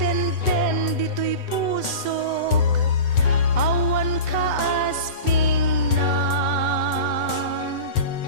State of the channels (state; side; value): late; right; 7.9 ms